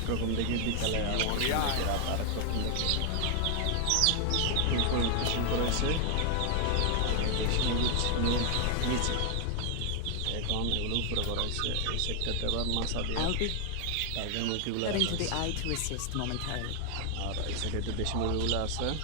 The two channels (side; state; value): both; different; correlation 0.00